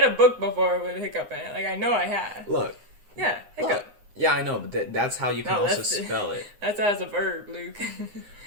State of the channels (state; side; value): late; left; 9.7 ms